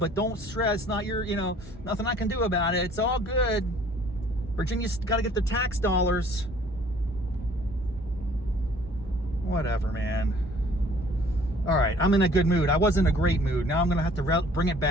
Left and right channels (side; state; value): both; normal; correlation 0.55